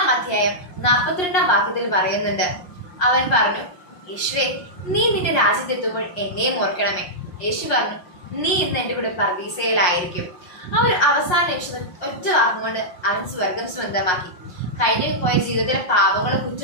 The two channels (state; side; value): late; right; 5.6 ms